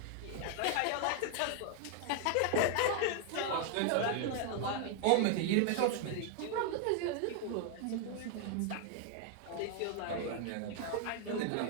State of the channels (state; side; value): different; both; correlation 0.00